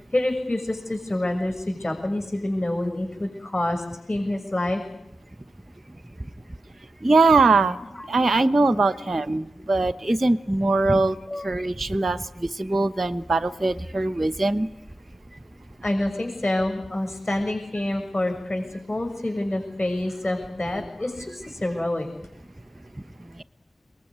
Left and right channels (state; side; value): normal; both; correlation 0.91